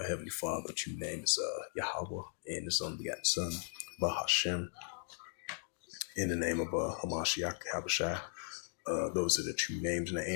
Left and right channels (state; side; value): silent; right; 53 dB below the other